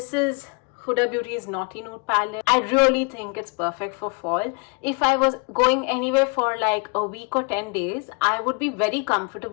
is Huda Beauty's Naughty Nude palette. I really think it's perfect for fall. If I was going anywhere for like a week or 10 days, I would be very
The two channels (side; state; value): right; quieter; 31.3 dB